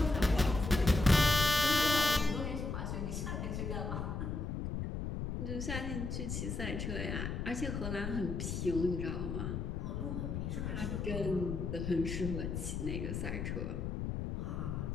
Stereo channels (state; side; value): noise; left; rumble, 3 dB below the sound